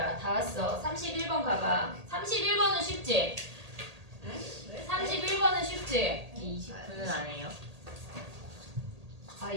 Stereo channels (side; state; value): left; late; 1.8 ms